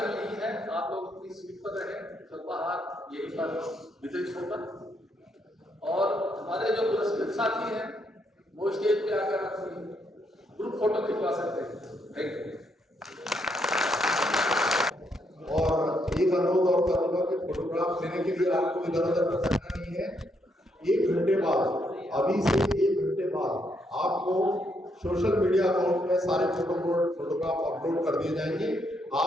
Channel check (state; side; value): normal; both; correlation 0.76